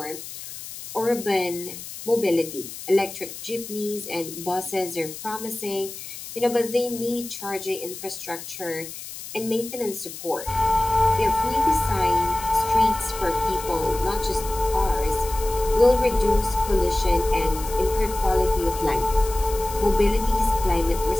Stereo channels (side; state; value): left; noise; hiss, 12 dB below the sound